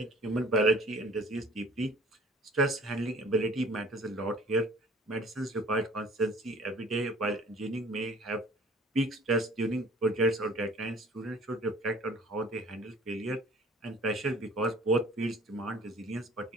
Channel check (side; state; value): both; normal; correlation 0.52